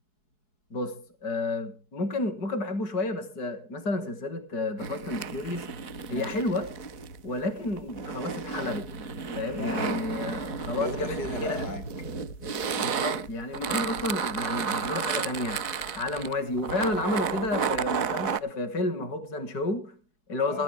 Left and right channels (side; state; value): right; late; 4.7 ms